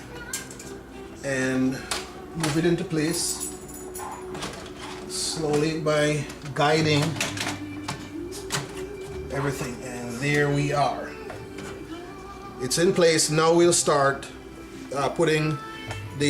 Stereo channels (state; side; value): identical; both; correlation 1.00